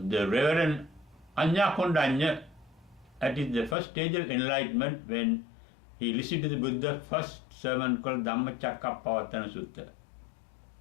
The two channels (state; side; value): drops out; right; at 3.8 s